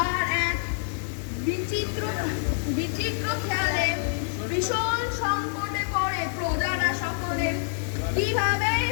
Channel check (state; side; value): silent; right; digital silence